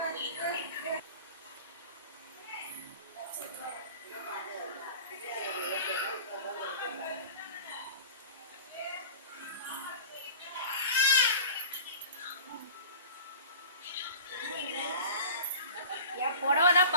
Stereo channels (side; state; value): both; inverted; correlation -0.38